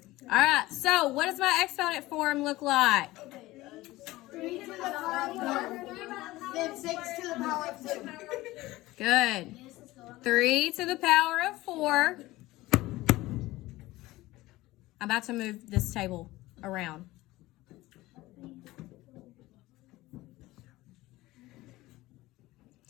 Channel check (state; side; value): quieter; right; 18.3 dB